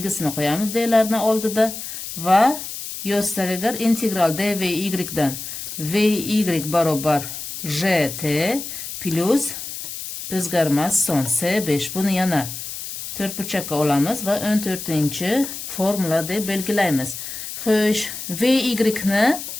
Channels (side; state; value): left; noise; hiss, 8 dB below the sound